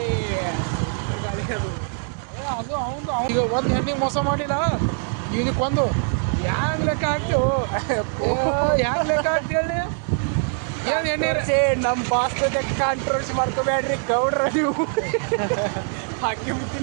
ಅದು ಈಗ ಒಂದು ಹೆಣ್ಣಿಗೆ ಮೋಸ ಮಾಡಿಲ್ಲ, ಇದಕ್ಕೊಂದು ಹ್ಯಾಂಗ ಲೆಕ್ಕ ಹಾಕ್ತು ಹ್ಯಾಂಗ ಲೆಕ್ಕ ಹಾಕಿ ಹೇಳಿ. ನಮ್ಮ ಬಾಸ್ ಜೊತೆ ಕಾಂಟ್ರವರ್ಸಿ ಮಾಡ್ಕೋಬೇಡ್ರಿ ಗೌಡ್ರ, ನೀವು ಹಾಕಿ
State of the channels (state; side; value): silent; left; 56 dB below the other